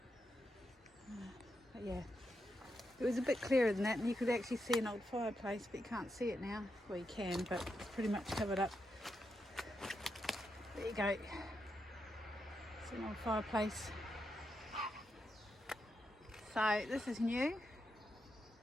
But yeah, it was a bit clearer than that, and you could actually see an old fireplace, but you can't see it now. Well, you can, but it's pretty much covered up. There you go. It's an old fireplace. So this is new.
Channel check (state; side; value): normal; both; correlation 0.85